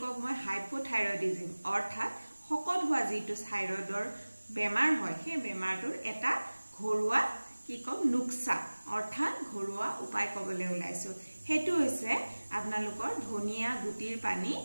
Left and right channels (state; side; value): inverted; both; correlation -1.00